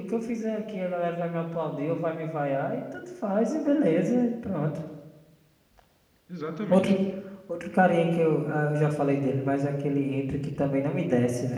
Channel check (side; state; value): both; identical; correlation 1.00